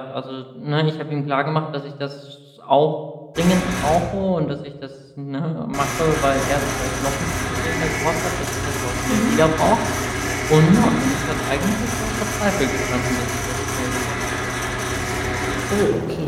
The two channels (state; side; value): identical; both; correlation 1.00